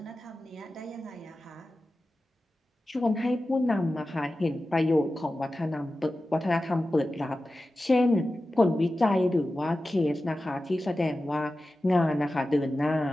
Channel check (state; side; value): normal; both; correlation 0.94